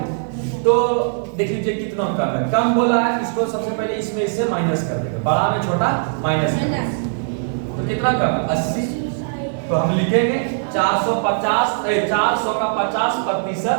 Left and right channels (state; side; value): silent; left; digital silence